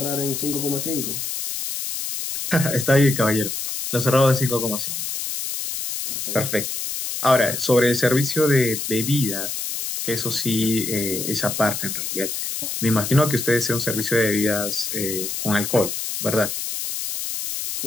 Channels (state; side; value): noise; left; hiss, 4 dB below the sound